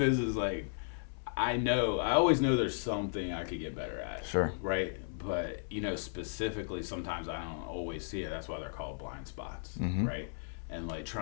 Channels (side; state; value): right; silent; 54 dB below the other